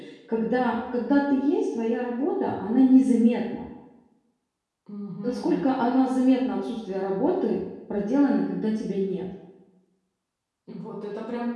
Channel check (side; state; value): both; identical; correlation 1.00